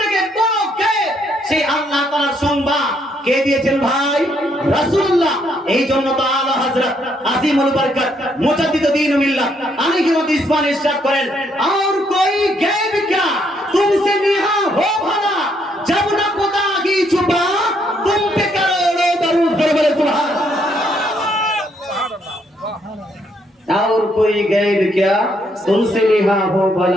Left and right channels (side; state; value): both; normal; correlation 0.72